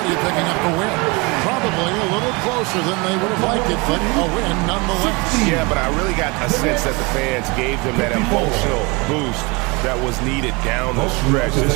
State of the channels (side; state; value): left; quieter; 27.1 dB